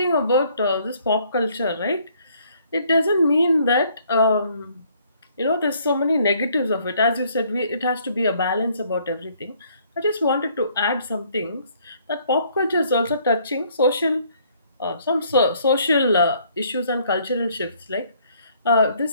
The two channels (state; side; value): inverted; both; correlation -0.64